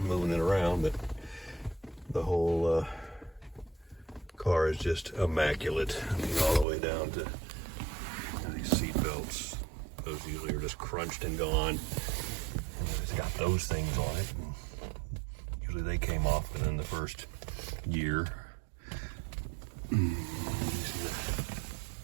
moving it around, but the whole car is just immaculate. I mean, all the way down to these seat belts. Those usually are just crunched and gone. And it's got those things on it. And usually they came off within the first year. You see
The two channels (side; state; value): left; drops out; at 6.7 s